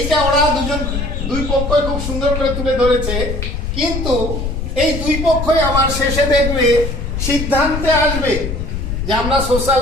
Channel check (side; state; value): left; noise; rumble, 3 dB below the sound